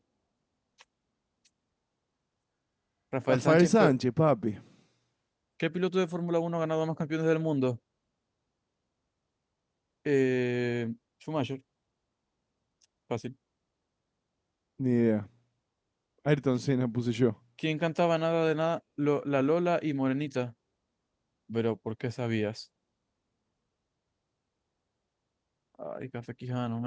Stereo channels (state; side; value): identical; both; correlation 1.00